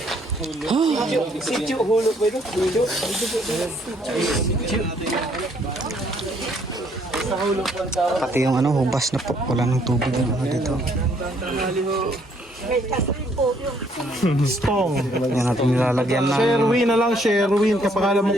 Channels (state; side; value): normal; both; correlation 0.67